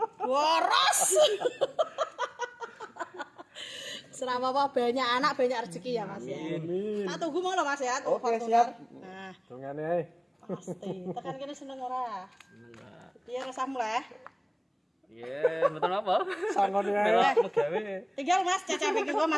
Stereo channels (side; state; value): both; identical; correlation 1.00